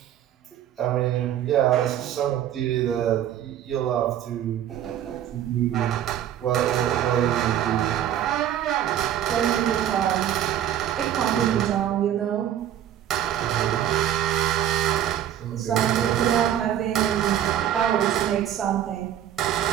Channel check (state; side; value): quieter; left; 10.9 dB